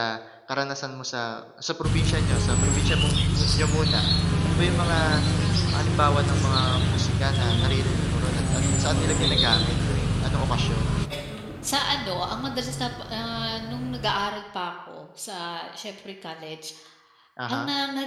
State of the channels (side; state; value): both; identical; correlation 1.00